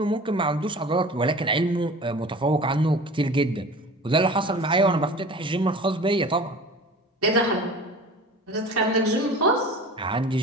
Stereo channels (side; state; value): both; normal; correlation 0.39